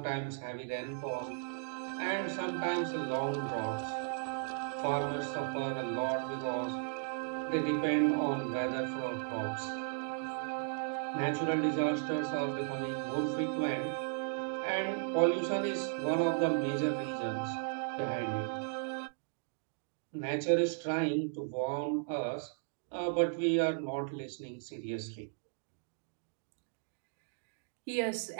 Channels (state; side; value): silent; left; digital silence